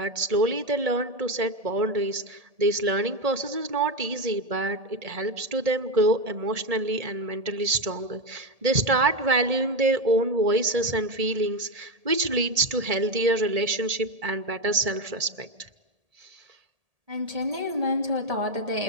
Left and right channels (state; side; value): late; left; 1.7 ms